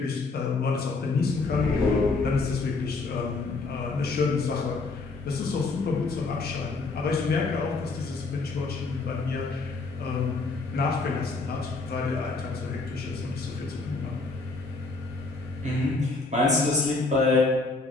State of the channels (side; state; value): right; quieter; 3.7 dB